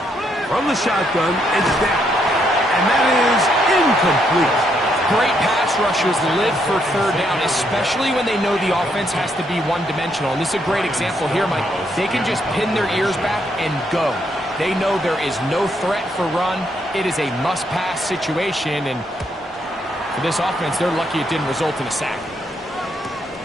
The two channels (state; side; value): normal; both; correlation 0.75